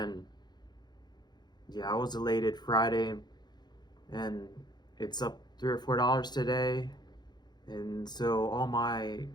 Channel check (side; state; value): right; late; 0.21 ms